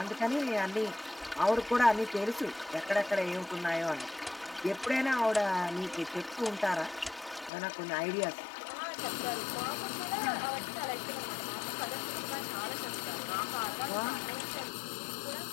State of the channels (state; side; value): drops out; right; at 7.5 s